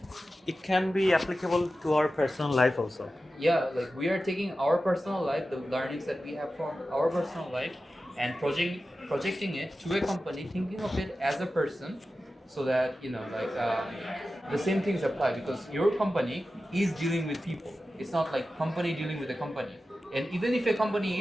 It can be applicable to our personal life also. Yeah, like we are taking our personal life, the learnings that we have from our personal life, and projecting it to a company, thinking of it as a person, so that the same things apply, because your company is dealing with people. It's not like company dealing with a company. And even if a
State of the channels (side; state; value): both; normal; correlation 0.93